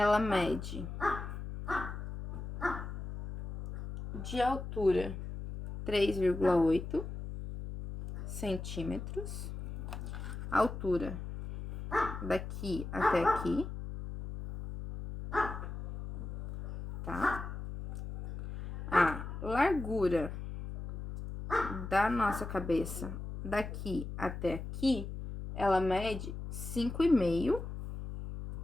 mede de altura 3,8 centímetros, altura daqui até aqui, tá? A largura da nossa cabeça daqui até aqui, ela mede 5,5.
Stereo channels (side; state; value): left; noise; hum, 7 dB below the sound